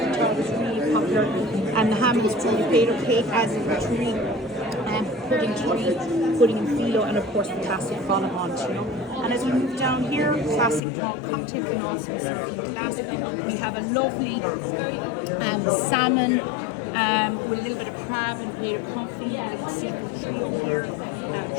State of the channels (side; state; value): right; drops out; at 10.8 s